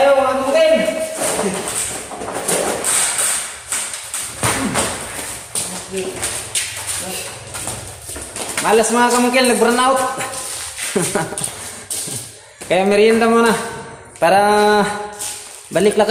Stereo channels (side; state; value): both; identical; correlation 1.00